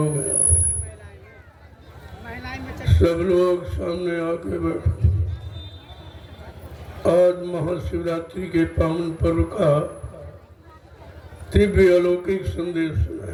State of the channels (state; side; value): identical; both; correlation 1.00